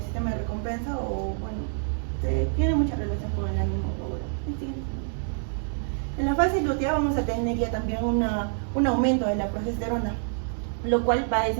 sistema de recompensa, o bueno, tiene mucha relación con el ánimo. En la fase lútea vamos a tener ya también un aumento de la progesterona, lo cual va a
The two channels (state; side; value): silent; left; digital silence